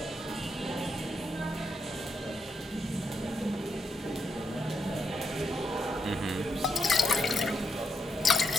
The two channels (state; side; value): normal; both; correlation 0.80